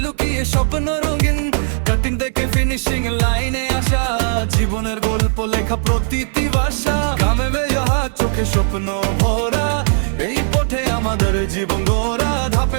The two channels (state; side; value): silent; left; 67 dB below the other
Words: লুকিয়ে স্বপ্ন রঙিন। কাটিং দেখে ফিনিশিং লাইনে আসা, জীবনের গল্প লেখা প্রতিটি ভাষা। ঘামে বেজাহা চোখে স্বপ্ন ভরা, এই পথে আমাদের জীবন গড়া।